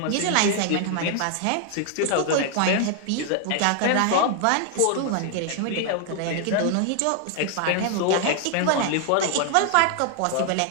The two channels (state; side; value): different; both; correlation 0.00